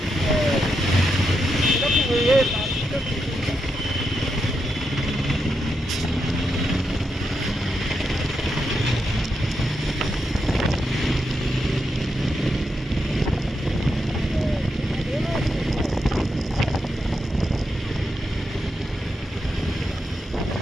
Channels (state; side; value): normal; both; correlation 0.84